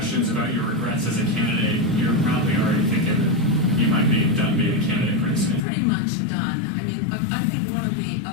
about your regrets as a candidate, you're probably already thinking that you might be done being a candidate pretty soon. Pretty much done. I mean, I think one of the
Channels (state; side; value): drops out; right; at 5.6 s